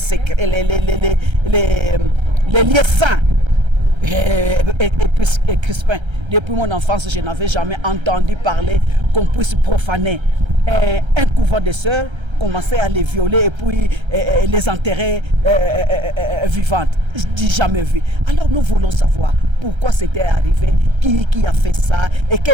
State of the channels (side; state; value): left; late; 1.3 ms